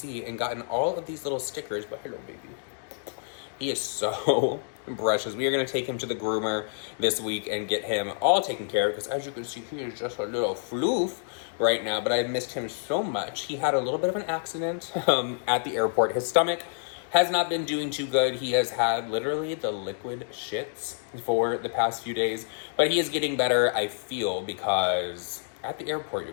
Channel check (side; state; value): right; silent; digital silence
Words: and gotten all of these little stickers. But hello, baby. He is so precious. We are going to take him to the groomer this week and get him all taken care of because, as you can see, he is just a little floof right now, but I missed him so much. He had a little bit of an accident at the airport. His stomach has not been doing too good. He has had literally the liquid shits for the past few days, but he is getting better, I feel, because at the airport, you